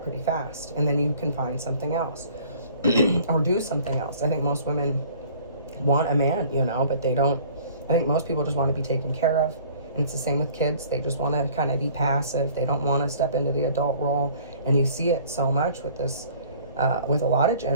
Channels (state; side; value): inverted; both; correlation -0.52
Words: fast, and then you can find something else or do something else. I think most women want a man, but they don't. I think most people just want to be taken care of. And it's the same with kids. They just want to kind of be passive. They don't want to step into the adult role. And you see it so much with this, with a lot of